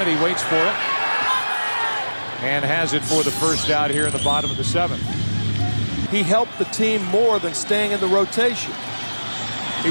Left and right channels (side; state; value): both; inverted; correlation -1.00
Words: waits for it. And has it for the first out here in the bottom of the 7th. He helped the team more than staying in the rotation. He